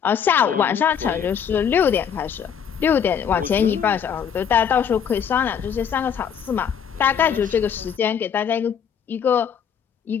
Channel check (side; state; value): right; quieter; 7.8 dB